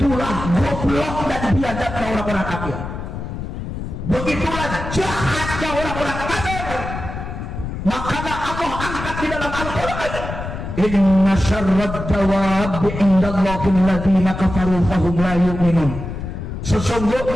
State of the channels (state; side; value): noise; left; rumble, 7 dB below the sound